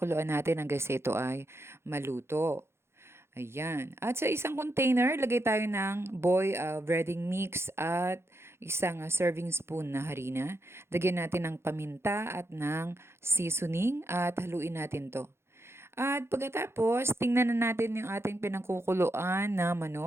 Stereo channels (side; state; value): left; late; 0.12 ms